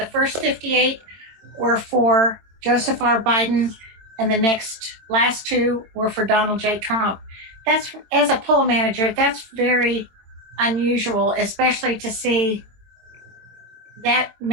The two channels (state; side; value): late; left; 22 ms